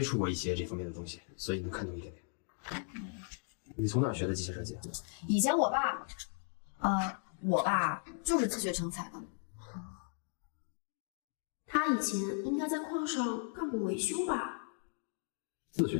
触过一些这方面的东西，所以能看懂一点点。你从哪儿学的机械设计？以前我爸就是自学成才的。他以前应该在矿上干过维修吧？自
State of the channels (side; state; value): right; silent; 53 dB below the other